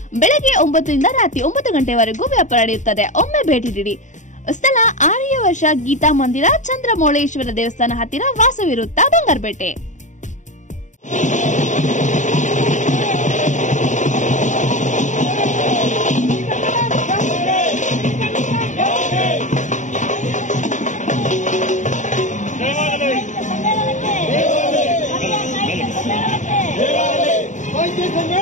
ಬೆಳಗ್ಗೆ 9 ರಿಂದ ರಾತ್ರಿ 9 ಗಂಟೆವರೆಗೂ ವ್ಯಾಪಾರ ನಡೆಯುತ್ತದೆ. ಒಮ್ಮೆ ಭೇಟಿ ನೀಡಿ. ಸ್ಥಳ ಆರ್ಯವರ್ಷ ಗೀತಾ ಮಂದಿರ, ಚಂದ್ರಮೌಳೇಶ್ವರ ದೇವಸ್ಥಾನ ಹತ್ತಿರ, ವಾಸವಿರುತ್ತ, ಬಂಗಾರಪೇಟೆ.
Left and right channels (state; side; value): late; right; 0.36 ms